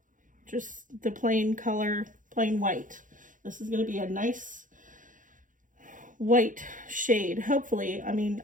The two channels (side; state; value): left; late; 0.38 ms